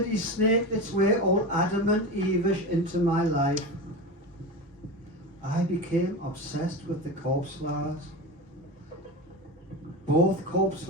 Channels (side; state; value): both; normal; correlation 0.24